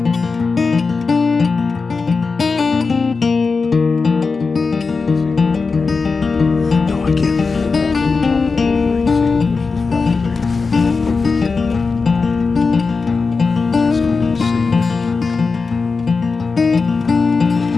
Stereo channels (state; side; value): quieter; right; 4.5 dB